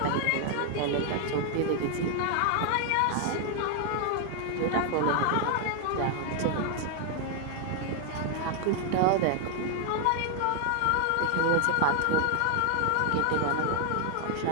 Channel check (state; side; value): different; both; correlation 0.00